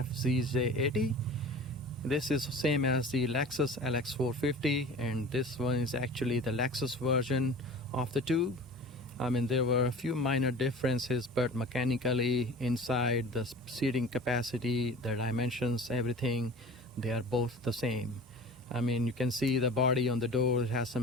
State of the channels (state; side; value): normal; both; correlation 0.39